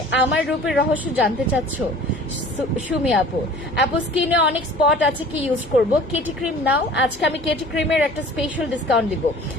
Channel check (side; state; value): both; normal; correlation 0.46